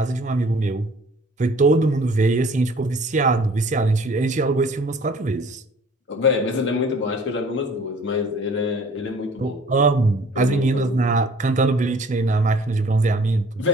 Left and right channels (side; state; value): both; normal; correlation 0.52